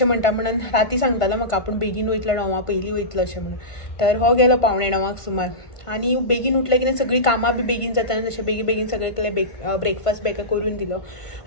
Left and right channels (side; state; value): right; late; 1.5 ms